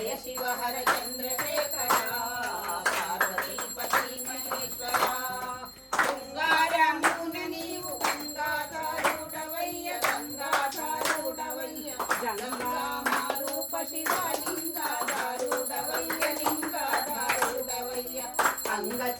శివ హర చంద్రశేఖర పార్వతీపతి మహేశ్వర గంగారమున నీవు గంగాధారుడవయ్య గంగామారూప శివలింగాధారుడవయ్య అంగ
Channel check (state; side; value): identical; both; correlation 1.00